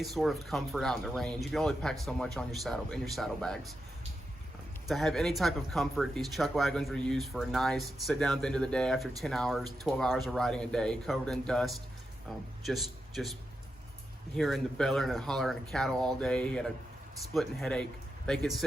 sort of comfort out in the range, you can only pack so much on your saddlebags. To have any type of comfort, these chuck wagons were used for a nice sit down at the end of the day after 10 hours, 12 hours of riding a day, covered in dust, just hearing the bellowing and hollering of cattle all day. He had a splitting headache. They could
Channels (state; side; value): normal; both; correlation 0.87